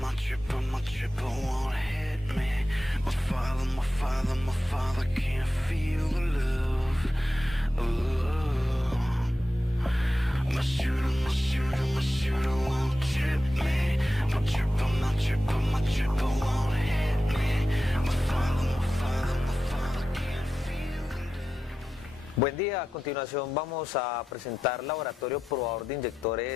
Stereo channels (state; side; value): normal; both; correlation 0.91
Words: my triple won't hit me. My father can't feel the love. Oh, my shooter won't trip me. My triple won't hit me. My father can't feel the love. Buen día, a continuación vamos a presentar laboratorio probador de